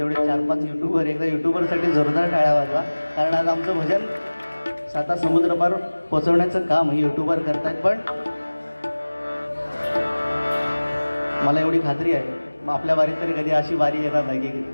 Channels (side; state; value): both; inverted; correlation -1.00